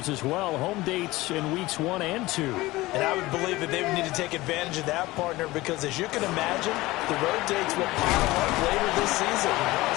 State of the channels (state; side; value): quieter; right; 19.3 dB